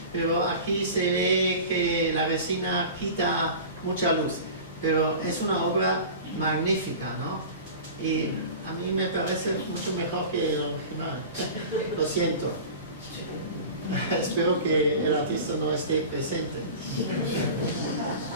pero aquí se ve que la resina quita mucha luz. Pero es una obra magnífica, ¿no? Y a mí me parece mucho mejor que el original. Lo siento. Espero que el artista no esté presente.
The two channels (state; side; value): inverted; both; correlation -0.36